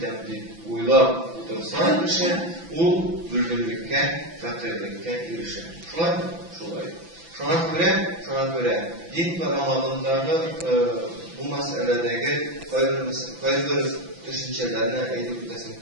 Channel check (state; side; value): late; left; 6.0 ms